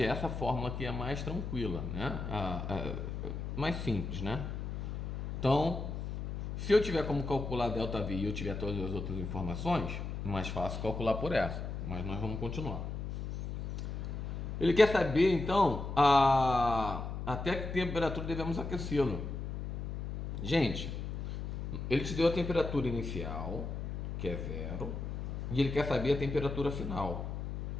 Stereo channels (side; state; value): left; noise; hum, 5 dB below the sound